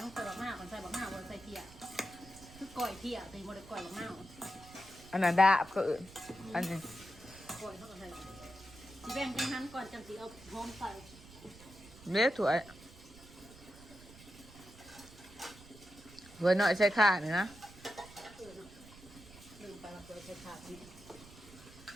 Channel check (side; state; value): right; noise; rumble, 19 dB below the sound